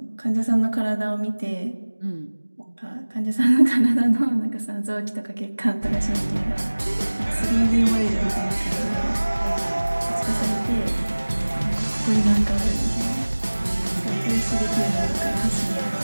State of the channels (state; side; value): inverted; both; correlation -1.00